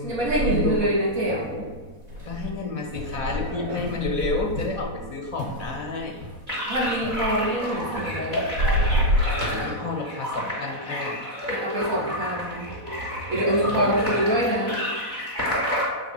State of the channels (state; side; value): late; left; 4.1 ms